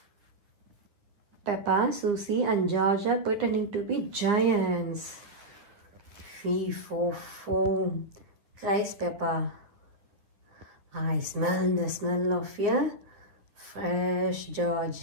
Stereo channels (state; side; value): late; left; 10 ms